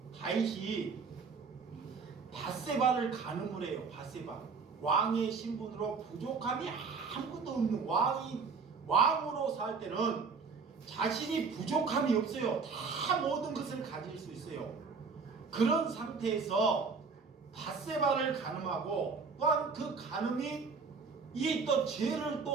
다윗이 밧세바를 간음을 해요. 밧세바. 왕의 신분으로 부족함이 아무것도 없는 왕으로 살 때는 자신이 부족함이 없어요. 다 모든 것을 가질 수 있어요. 그런 상태에서 밧세바를 간음하고 또한 그 간음이 이 또 죄를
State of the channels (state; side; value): quieter; left; 5.0 dB